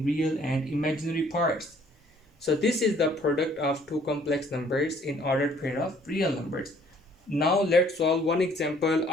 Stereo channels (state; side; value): normal; both; correlation 0.60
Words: real and imaginary parts. So this is the product of two complex numbers in ordered pair of real numbers. Now let's solve one example